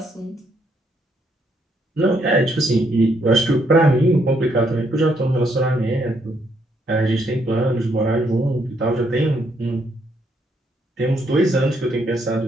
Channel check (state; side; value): normal; both; correlation 0.73